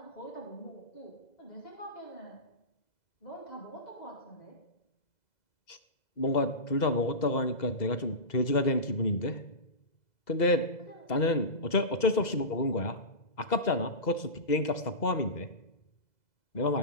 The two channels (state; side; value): late; right; 2.0 ms